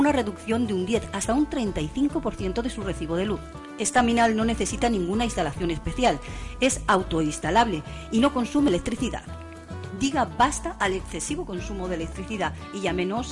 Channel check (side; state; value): both; identical; correlation 1.00